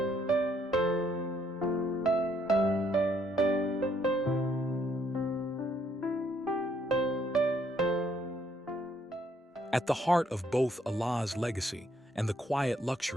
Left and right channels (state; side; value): normal; both; correlation 0.69